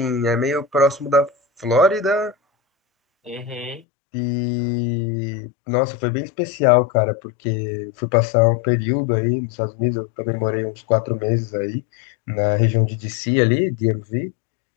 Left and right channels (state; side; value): drops out; right; at 3.8 s